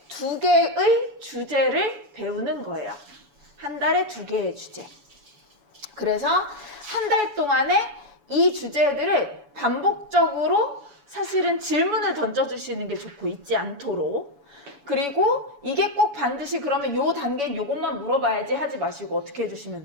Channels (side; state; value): left; late; 7.0 ms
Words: 2개의 주제를 배우는 거예요. 한 달에 2개의 주제. 그래서 한 달 동안에 이 주제들을 반복적으로 사실은 질문을 던져주시는 게 좋고, 잊지 않도록. 그리고 이게 꼭 반드시 그러면 요 단계는 요것만 물어봐야지 하지 마시고 어떻게 해주시면